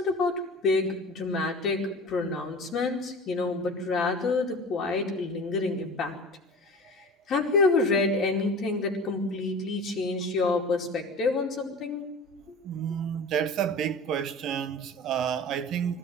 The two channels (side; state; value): both; normal; correlation 0.37